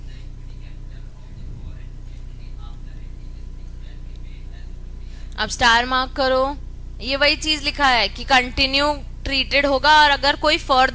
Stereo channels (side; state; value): both; identical; correlation 1.00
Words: अब स्टार मार्क करो, ये वही चीज लिखा है कि कंटिन्यू ट्रीटेड होगा। और अगर कोई